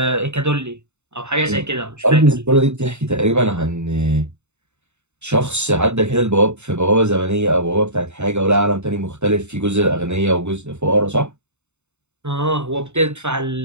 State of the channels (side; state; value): left; late; 0.82 ms